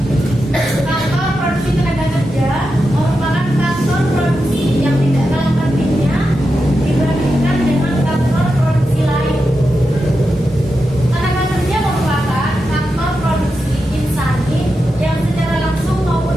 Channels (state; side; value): normal; both; correlation 0.89